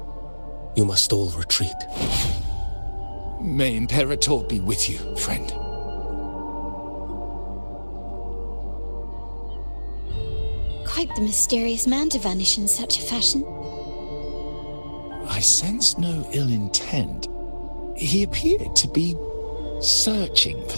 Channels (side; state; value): both; inverted; correlation -1.00